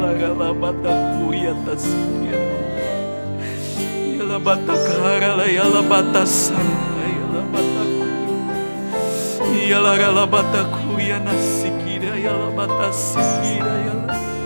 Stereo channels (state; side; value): inverted; both; correlation -1.00